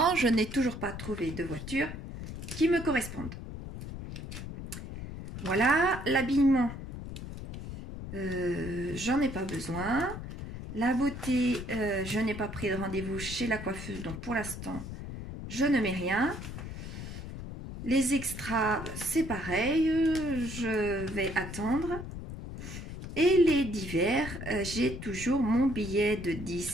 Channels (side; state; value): left; noise; rumble, 9 dB below the sound